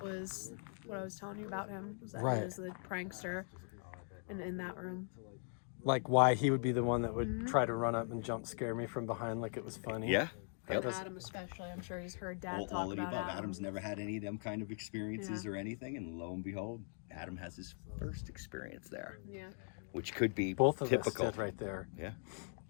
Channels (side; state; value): right; silent; 51 dB below the other